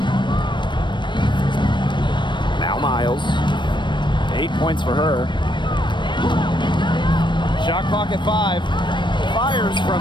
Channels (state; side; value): late; right; 0.22 ms